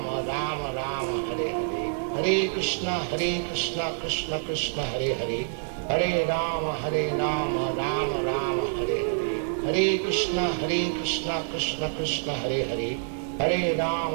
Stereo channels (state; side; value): silent; left; digital silence